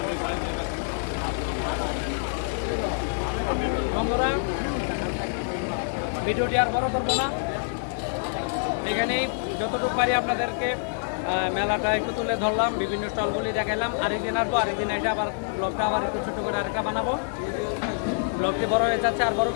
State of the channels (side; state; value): right; silent; digital silence